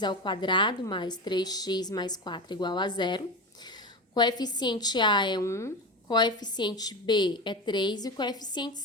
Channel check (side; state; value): both; normal; correlation 0.23